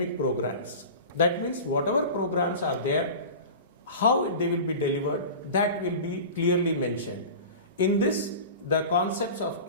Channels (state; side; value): inverted; both; correlation -0.34